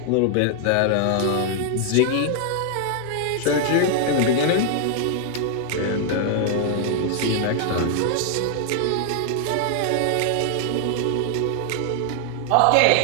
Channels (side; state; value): both; different; correlation 0.00